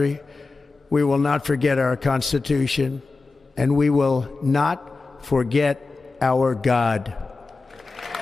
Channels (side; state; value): right; quieter; 3.8 dB